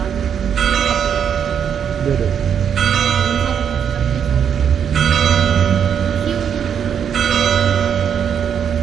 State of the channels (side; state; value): left; quieter; 8.1 dB